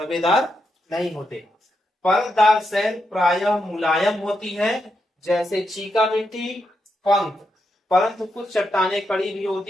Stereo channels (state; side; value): normal; both; correlation 0.83